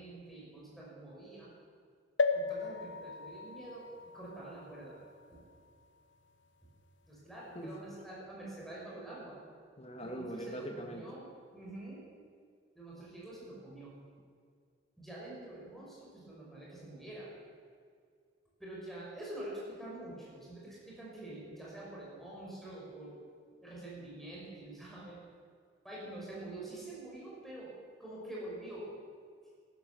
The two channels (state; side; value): normal; both; correlation -0.13